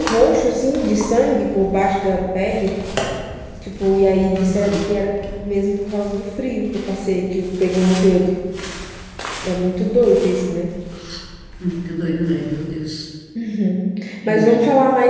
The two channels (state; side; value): identical; both; correlation 1.00